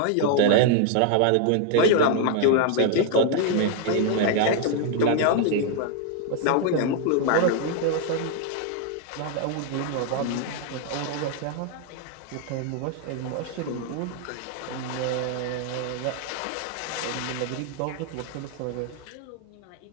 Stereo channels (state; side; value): different; both; correlation 0.00